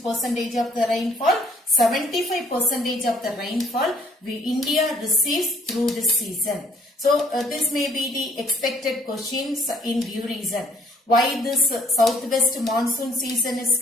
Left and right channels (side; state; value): both; normal; correlation 0.61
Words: percentage of the rainfall? 75% of the rainfall India receives through this season. So this may be the expected questions in due reason. Why this southwest monsoon season is